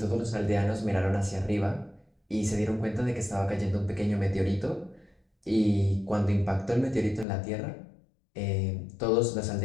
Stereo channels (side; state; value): right; drops out; at 7.2 s